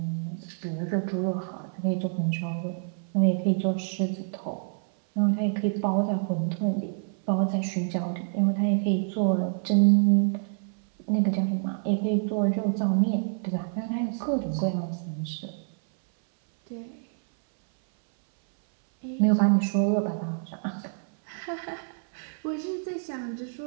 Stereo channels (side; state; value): left; silent; 59 dB below the other